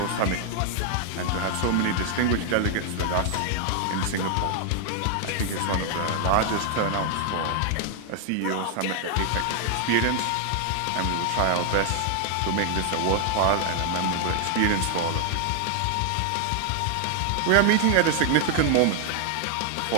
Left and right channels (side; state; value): both; different; correlation 0.00